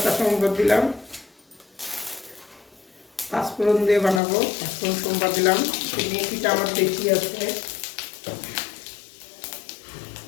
সম্বাদ দিলাম, পাঁচফোড়ন দিয়ে বানাবো, পাঁচফোড়ন সম্বাদ দিলাম। মেথিটা আমার বেশি আছে,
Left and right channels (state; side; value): drops out; right; at 4.2 s